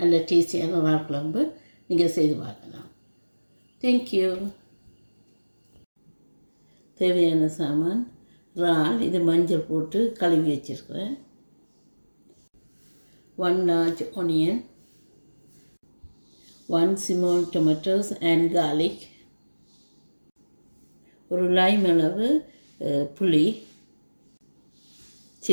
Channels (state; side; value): inverted; both; correlation -1.00